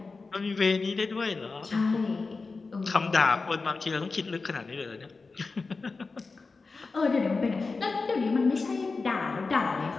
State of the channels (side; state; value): right; quieter; 4.1 dB